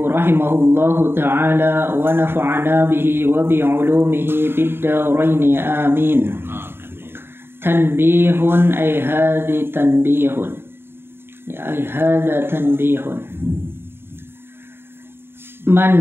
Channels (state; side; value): late; left; 0.11 ms